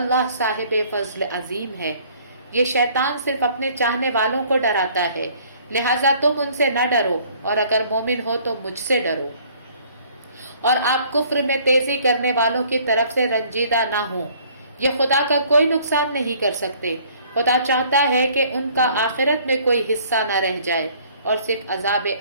صاحب فضل عظیم ہے۔ یہ شیطان صرف اپنے چاہنے والوں کو ڈراتا ہے، لہٰذا تم ان سے نہ ڈرو، اور اگر مومن ہو تو مجھ سے ڈرو، اور آپ کفر میں تیزی کرنے والوں کی طرف سے رنجیدہ نہ ہوں۔ یہ خدا کا کوئی نقصان نہیں کر سکتے۔ خدا چاہتا ہے کہ ان کا آخرت میں کوئی حصہ نہ رہ جائے اور صرف عذاب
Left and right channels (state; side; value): inverted; both; correlation -0.57